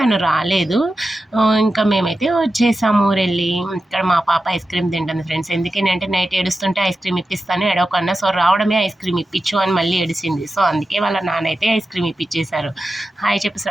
రాలేదు. ఇంకా మేమైతే వచ్చేసాము ఊరెళ్ళి. ఇక్కడ మా పాప ఐస్ క్రీమ్ తింటుంది ఫ్రెండ్స్. ఎందుకేనంటే నైట్ ఏడుస్తుంటే ఐస్ క్రీమ్ ఇప్పిస్తాను ఎడవకన్నా, సో రావడమే ఐస్ క్రీమ్ ఇప్పించు అని మళ్ళీ ఏడిసింది. సో అందుకే వాళ్ళ నాన్న అయితే ఐస్ క్రీమ్ ఇప్పించేశారు. హాయ్ చెప్పు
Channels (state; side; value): normal; both; correlation 0.92